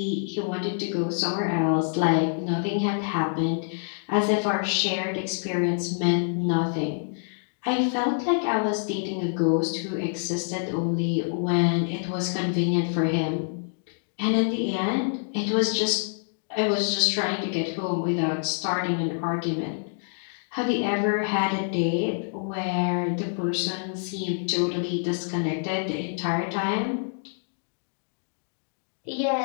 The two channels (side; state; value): right; silent; digital silence